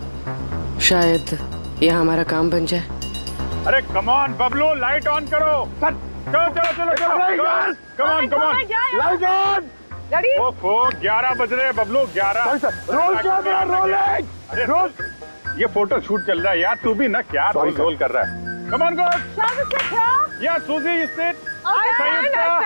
शायद यह हमारा काम बन जाए। अरे come on Bablu, light on करो। चलो चलो चलो, कम on come on, light on. ओफो 11 बज रहे हैं बबलू, 11। Roll camera rolling. अरे रोल, ये फोटो शूट चल रहा है यार, तू भी ना क्या रोल कर रहा है। Come on good. या सूजी यू सिट।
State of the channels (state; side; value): inverted; both; correlation -1.00